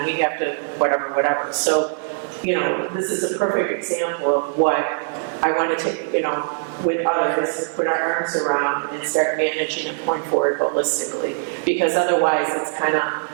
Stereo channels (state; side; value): silent; left; digital silence